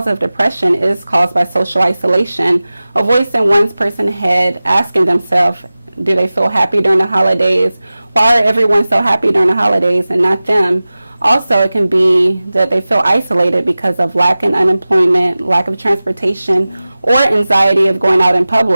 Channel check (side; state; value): both; inverted; correlation -0.97